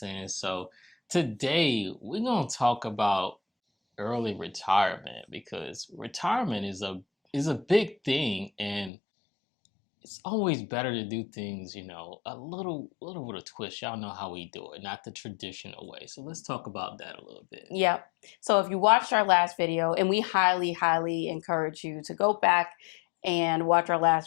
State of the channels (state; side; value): drops out; right; at 8.9 s